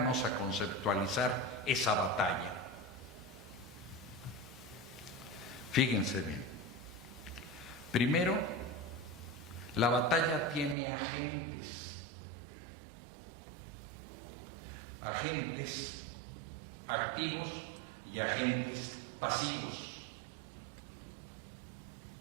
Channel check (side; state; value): left; drops out; at 10.8 s